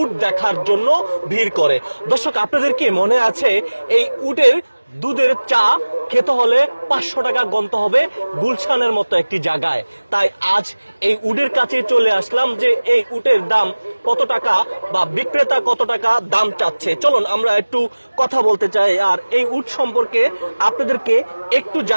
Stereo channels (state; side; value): inverted; both; correlation -1.00